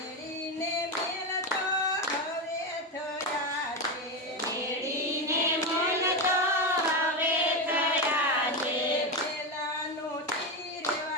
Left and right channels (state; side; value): normal; both; correlation 0.14